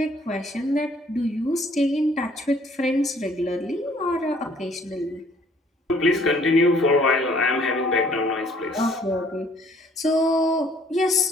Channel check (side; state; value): both; normal; correlation 0.59